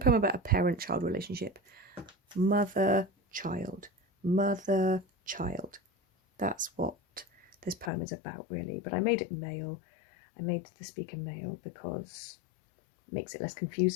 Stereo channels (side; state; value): right; drops out; at 7.9 s